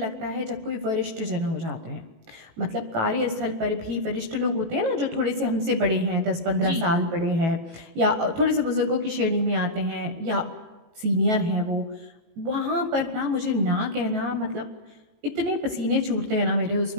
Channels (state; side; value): late; left; 18 ms